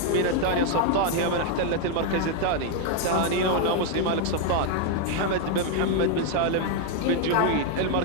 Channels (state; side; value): different; both; correlation 0.00